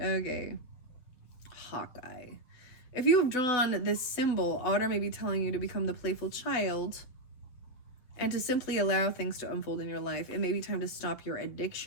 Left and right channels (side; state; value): right; late; 7.6 ms